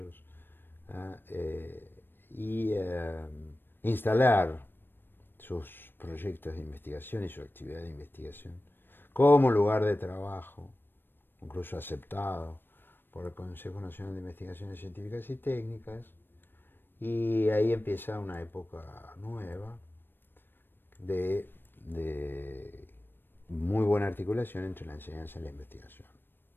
y instalar sus proyectos de investigación y su actividad de investigación como lugar de trabajo, incluso aceptado por el Consejo Nacional de Investigaciones Científicas y Técnicas, Y ahí empieza una época nueva de muy buena articulación entre la enseñanza y la investigación,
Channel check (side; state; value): right; late; 0.097 ms